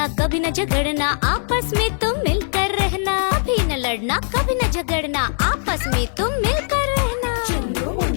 कभी न झगड़ना, आपस में तुम मिलकर रहना। कभी न लड़ना कभी न झगड़ना, आपस में तुम मिलकर रहना। चुन्नो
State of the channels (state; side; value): silent; right; 65 dB below the other